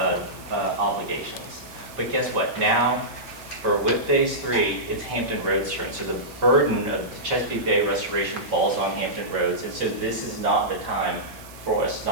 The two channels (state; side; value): noise; right; hiss, 20 dB below the sound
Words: obligations. But guess what? Now, for WIP Phase 3, it's Hampton Roads turn. So the burden of the Chesapeake Bay restoration falls on Hampton Roads. And so this is not the time for us